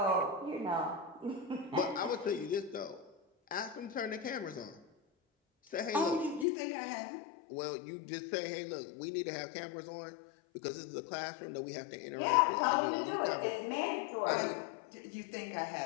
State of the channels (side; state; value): right; drops out; at 6.5 s